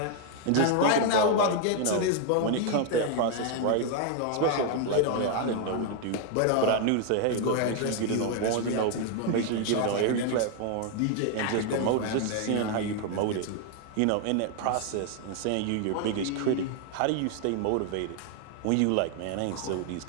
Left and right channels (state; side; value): different; both; correlation 0.00